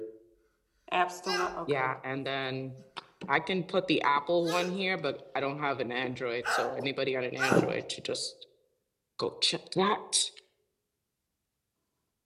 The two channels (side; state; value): both; identical; correlation 1.00